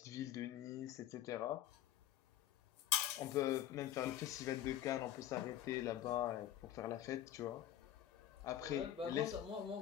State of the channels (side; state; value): right; quieter; 12.0 dB